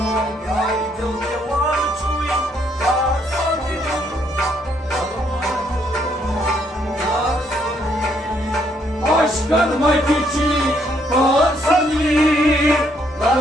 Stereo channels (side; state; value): both; normal; correlation 0.71